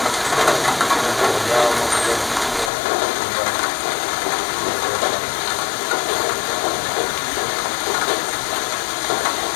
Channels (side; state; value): right; drops out; at 2.7 s